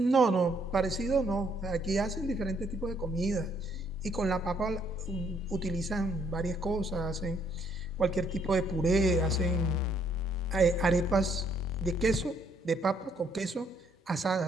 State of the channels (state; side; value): normal; both; correlation 0.69